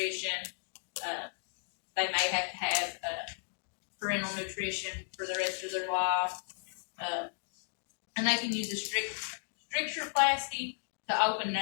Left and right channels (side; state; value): right; silent; digital silence